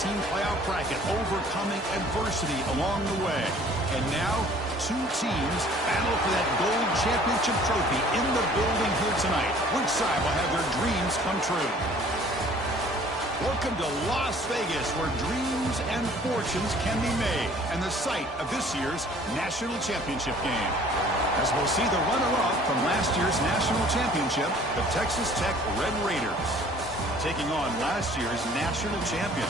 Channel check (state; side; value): normal; both; correlation 0.53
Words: playoff bracket, overcoming adversity along the way. And now, two teams battle for that gold championship trophy in the building here tonight. Which side will have their dreams come true? Welcome to Las Vegas, where dreams and fortunes can be made, and the site of this year's national championship game. As we'll see the runner-up from last year's national championship, the Texas Tech Red Raiders, taking on last year's national